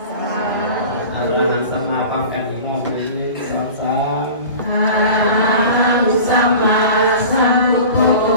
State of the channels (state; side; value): inverted; both; correlation -0.38